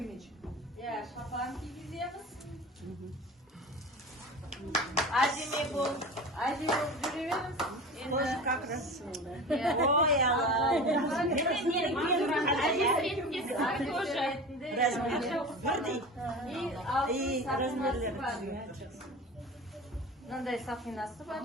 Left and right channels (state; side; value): normal; both; correlation 0.33